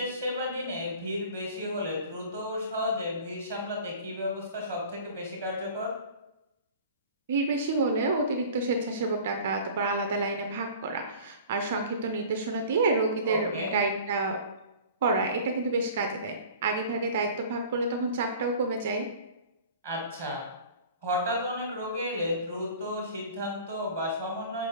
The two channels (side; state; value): both; inverted; correlation -0.43